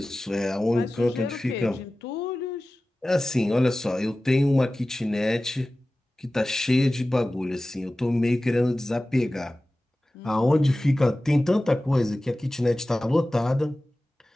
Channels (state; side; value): normal; both; correlation 0.96